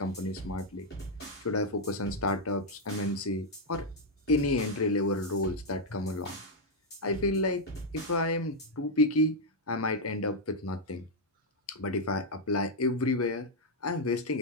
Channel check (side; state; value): both; normal; correlation -0.02